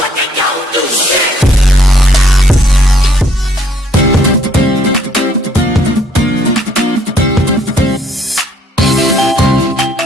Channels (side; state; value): both; normal; correlation 0.65